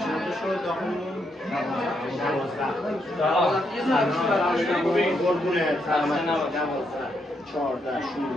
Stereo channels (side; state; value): both; normal; correlation 0.78